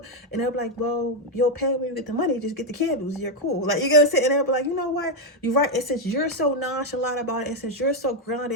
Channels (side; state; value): both; normal; correlation 0.04